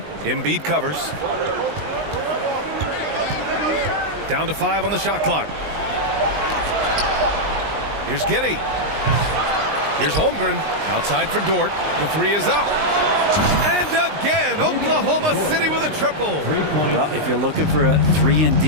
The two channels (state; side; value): late; left; 19 ms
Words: Embiid covers. Down to 5 on the shot clock. Here's Giddey. Here's Holmgren. Outside for Dort. The 3 is up. And again, Oklahoma City with a triple. Well, if you're looking for a